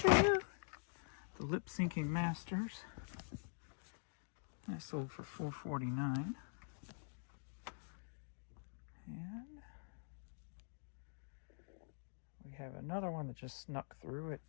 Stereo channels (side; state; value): right; silent; digital silence